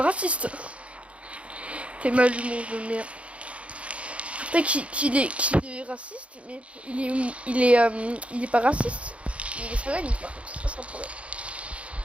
raciste. T'es mal humour de merde. Peut-être qu'il est raciste, mais il est pas raciste. Il est satanique, par contre, ça c'est un problème.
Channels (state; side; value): late; left; 0.062 ms